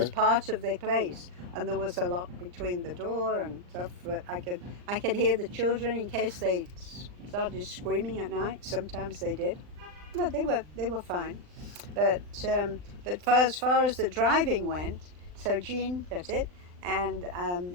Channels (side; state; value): left; late; 39 ms